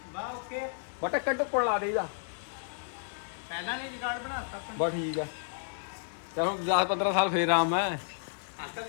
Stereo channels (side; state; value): right; silent; digital silence